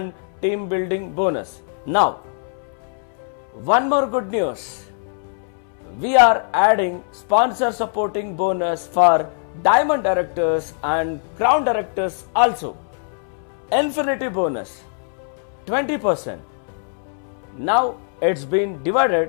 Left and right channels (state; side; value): silent; right; 64 dB below the other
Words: team building bonus. Now, one more good news. We are adding sponsor supporting bonus for diamond directors and crown directors also. Infinity bonus 20%. Now it's been